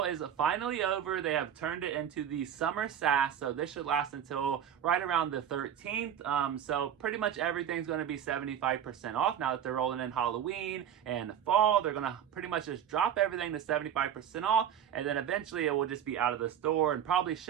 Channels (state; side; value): quieter; left; 9.3 dB